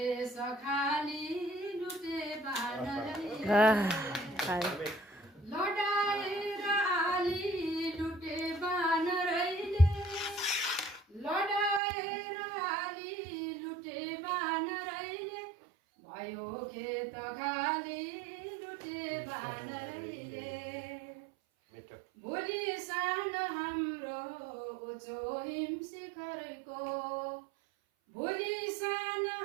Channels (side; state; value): left; drops out; at 11.8 s